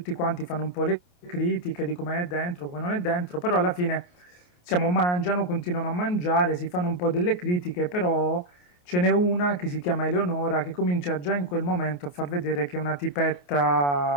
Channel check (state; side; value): late; right; 28 ms